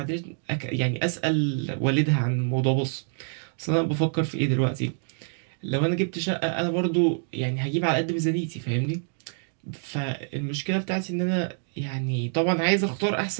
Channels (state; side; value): silent; left; 61 dB below the other